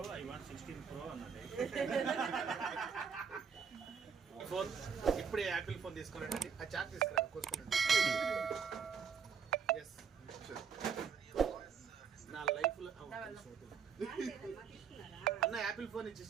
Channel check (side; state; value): left; quieter; 6.5 dB